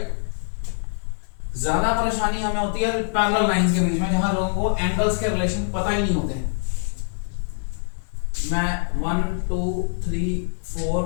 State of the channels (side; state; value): right; silent; digital silence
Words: ज्यादा परेशानी हमें होती है पैरेलल लाइंस के बीच में, जहां लोगों को एंगल्स के रिलेशन पता ही नहीं होते। मैं 1 2 3 4